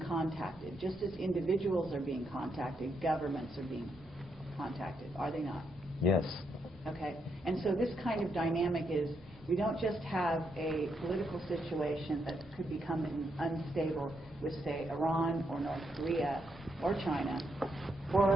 Just as individuals are being contacted, governments are being contacted, are they not? Yes. Okay, and so this kind of dynamic is, we don't just have a political situation that could become unstable with, say, Iran or North Korea or China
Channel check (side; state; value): both; normal; correlation 0.79